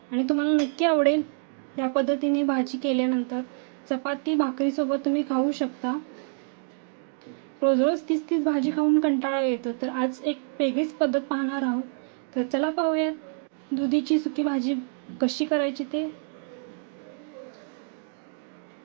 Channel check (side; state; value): left; silent; 60 dB below the other